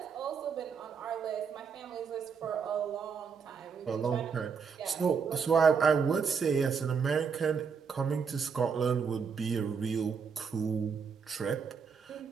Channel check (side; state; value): left; quieter; 6.0 dB